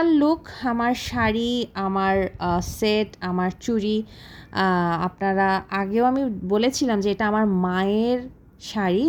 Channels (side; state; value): both; identical; correlation 1.00